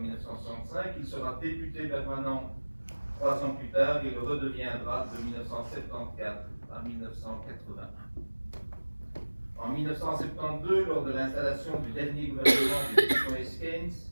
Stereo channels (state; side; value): inverted; both; correlation -1.00